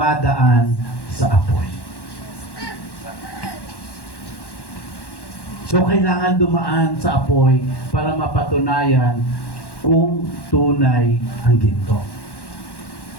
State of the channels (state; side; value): late; right; 1.1 ms